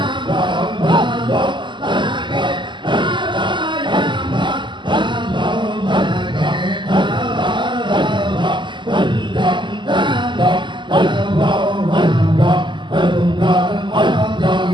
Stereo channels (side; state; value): left; late; 0.23 ms